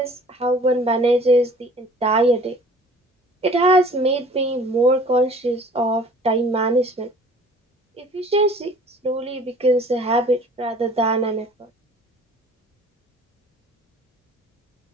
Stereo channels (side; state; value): both; normal; correlation 0.50